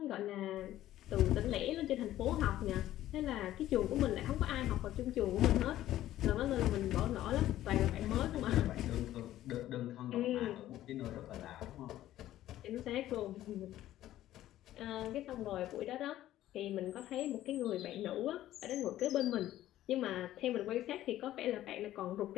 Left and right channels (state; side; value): quieter; right; 13.7 dB